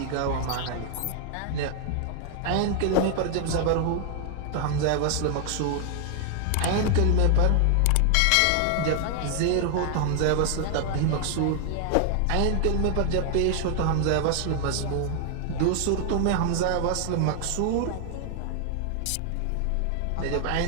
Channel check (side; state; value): both; different; correlation 0.00